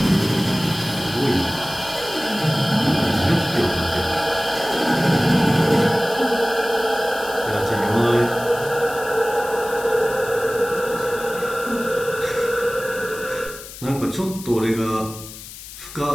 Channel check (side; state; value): left; noise; hiss, 14 dB below the sound